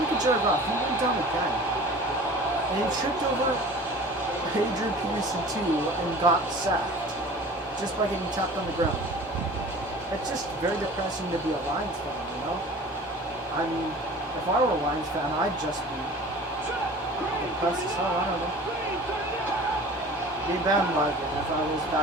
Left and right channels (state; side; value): normal; both; correlation 0.42